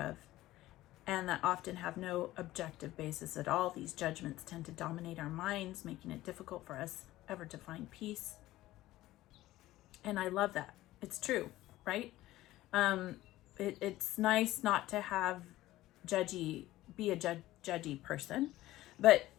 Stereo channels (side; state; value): right; quieter; 16.1 dB